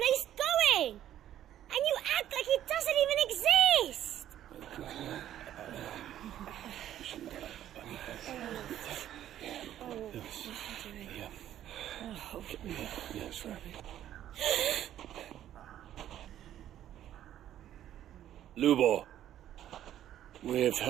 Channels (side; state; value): left; quieter; 11.7 dB